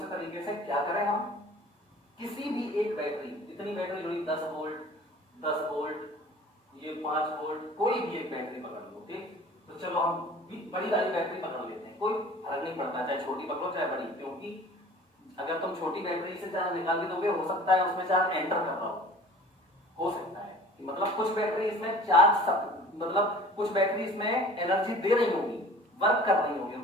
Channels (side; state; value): both; normal; correlation 0.45